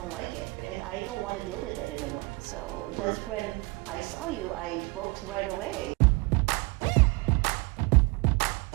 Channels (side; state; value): left; quieter; 25.9 dB